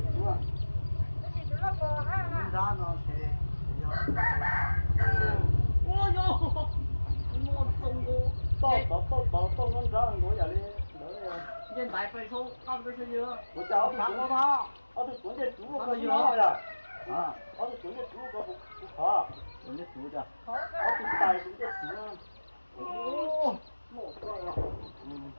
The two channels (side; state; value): both; inverted; correlation -1.00